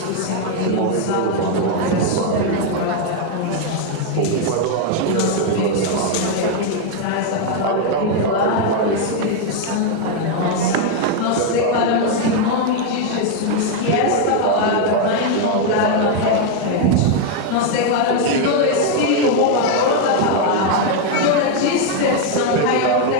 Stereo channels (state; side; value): different; both; correlation 0.01